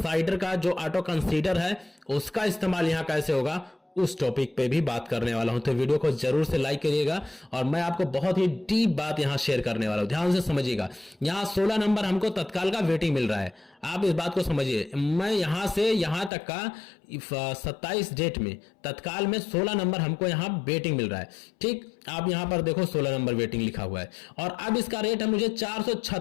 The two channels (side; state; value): right; drops out; at 16.3 s